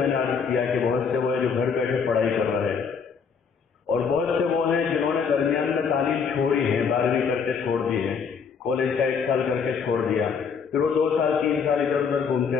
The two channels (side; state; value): right; quieter; 6.1 dB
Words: نے عرض کیا کہ بہت سے وہ ہیں جو گھر بیٹھے پڑھائی کر رہے ہیں، اور بہت سے وہ ہیں جنہوں نے درمیان میں تعلیم چھوڑی ہے، 12ویں کر کے چھوڑ دی ہے، کالج کا 1 سال کر کے چھوڑ دیا، پھر وہ 2 سال 3 سال ادھر ادھر